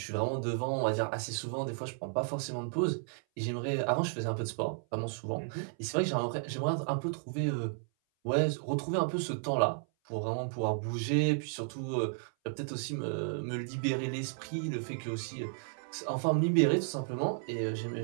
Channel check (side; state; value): left; silent; 56 dB below the other